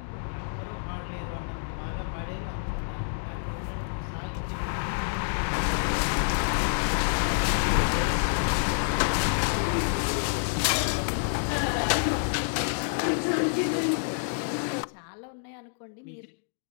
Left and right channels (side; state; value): right; silent; digital silence